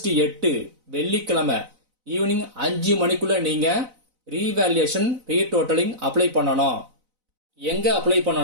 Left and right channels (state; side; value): late; left; 4.0 ms